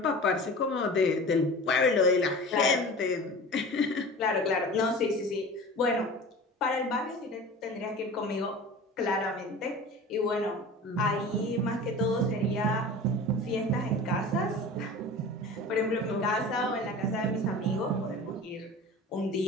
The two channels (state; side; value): normal; both; correlation 0.36